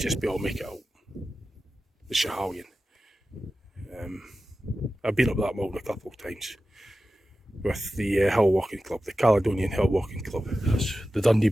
be able to make it out. The Schiehallion. I've been up that mountain a couple of times with the hill walking club, the Caledonian Hill Walking Club. That's the Dundee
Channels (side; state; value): both; normal; correlation 0.93